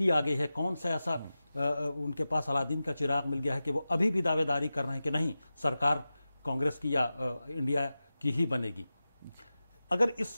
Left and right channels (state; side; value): inverted; both; correlation -0.94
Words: आ गई है, कौन सा ऐसा उनके पास अलादीन का चिराग मिल गया है कि वो अभी भी दावेदारी कर रहे हैं कि नहीं, सरकार कांग्रेस की या इंडिया की ही बनेगी। अगर